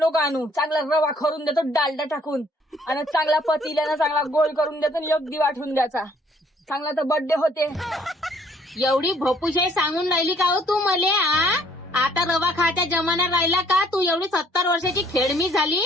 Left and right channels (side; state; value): both; normal; correlation 0.62